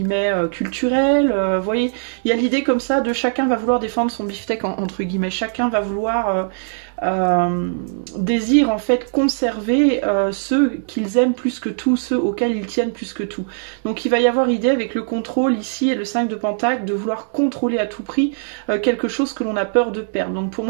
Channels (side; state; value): left; silent; 66 dB below the other